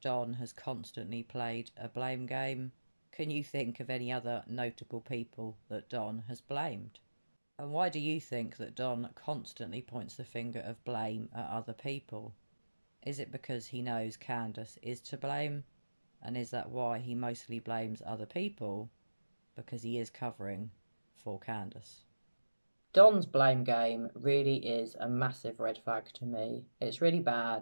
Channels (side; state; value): both; inverted; correlation -1.00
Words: Don has constantly played a blame game? Can you think of any other notable people that Don has blamed? And why do you think that Don constantly points the finger of blame at other people? Is it because he knows Candace is to blame? And is that why he mostly blames other people? Because he is covering for Candace. Don's blame game really is a massive red flag to me. It's really